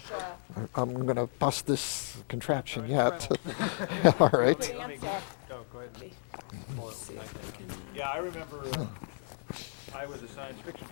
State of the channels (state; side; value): silent; right; digital silence